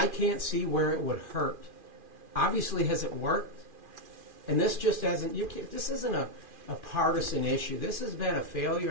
can't see where it would hurt. Obviously, has it worked? And this just hasn't. This isn't a partisan issue. This has been a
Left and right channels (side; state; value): left; late; 2.4 ms